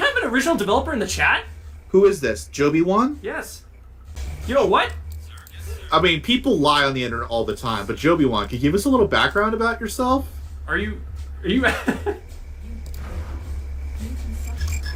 an original developer in the chat? Who is this? Joby1? Yes. You know what? I mean, people lie on the internet all the time, but Joby1, can you give us a little background about yourself? Are you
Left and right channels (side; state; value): both; identical; correlation 1.00